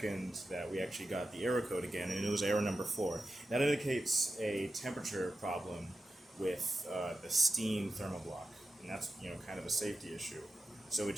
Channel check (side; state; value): both; normal; correlation 0.90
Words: that we actually got the error code again, and it was error number 4. That indicates a temperature problem with the steam thermal block, and that's kind of a safety issue. So it